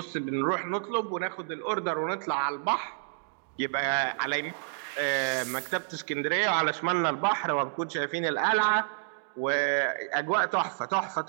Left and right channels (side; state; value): left; silent; digital silence